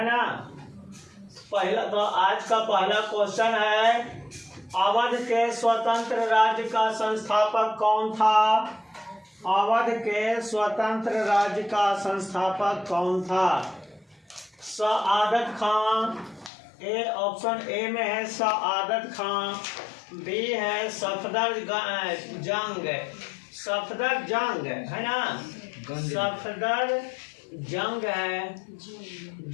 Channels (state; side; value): drops out; right; at 16.5 s